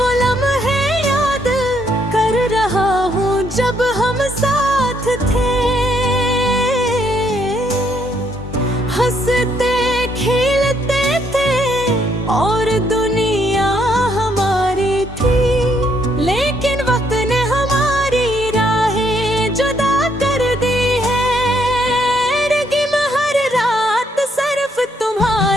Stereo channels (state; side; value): normal; both; correlation 0.71